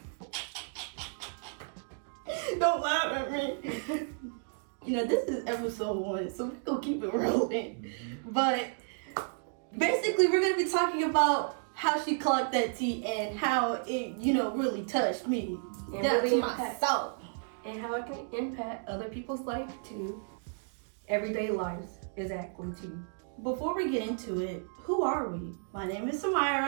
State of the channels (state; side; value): silent; left; digital silence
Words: Don't laugh at me. This is episode 1, so we're going to keep it rolling. But basically, we're going to be talking about how she clocked that tea and how it, really touched me. And Down really to my soul. And how it can impact other people's life too. Everyday lives, exactly too. Before we get into it, who are we? My name is